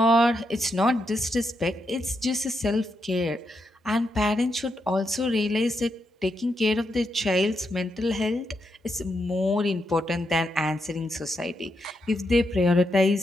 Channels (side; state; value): both; normal; correlation 0.82